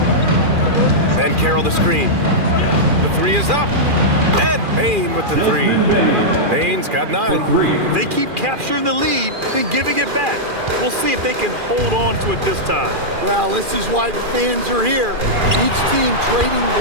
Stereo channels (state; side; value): late; left; 2.4 ms